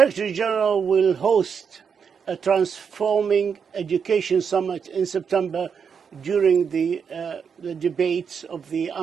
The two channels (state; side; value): quieter; left; 6.6 dB